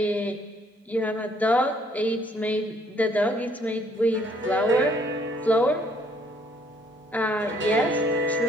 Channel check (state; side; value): normal; both; correlation 0.64